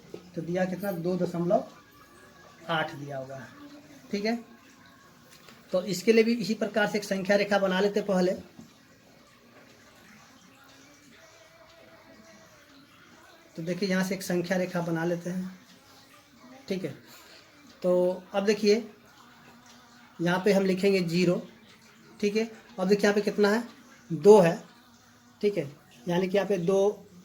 तो दिया कितना, 2.8 दिया हुआ है, ठीक है। तो इसके लिए भी इसी प्रकार से एक संख्या रेखा बना लेते पहले। तो देखिए यहाँ से एक संख्या रेखा बना लेते हैं, ठीक है। तो अब देखिए यहाँ पे हम लिखेंगे 0, ठीक है। अब देखिए यहाँ पे कितना है, 2 है, ठीक है। यानी कि यहाँ पे 2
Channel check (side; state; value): both; identical; correlation 1.00